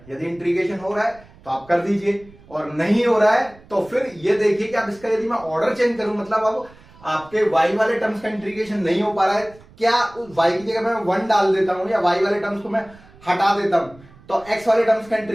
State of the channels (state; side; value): noise; right; rumble, 24 dB below the sound